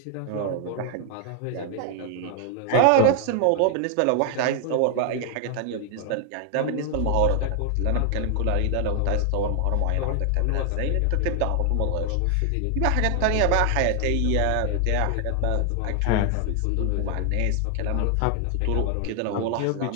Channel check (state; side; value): different; both; correlation 0.00